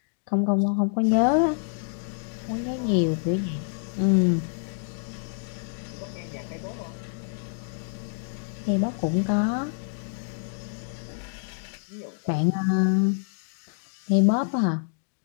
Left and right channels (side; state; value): right; silent; digital silence